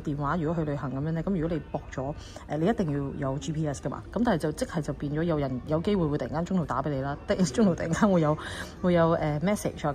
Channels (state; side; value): identical; both; correlation 1.00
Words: 電話，如果去旅行咁樣咧，咁如果你駁咗你一定要有 GPS 噶嘛。咁但係就變咗有人有機會會突然間中途打俾你啦，中途突然間會有message 啊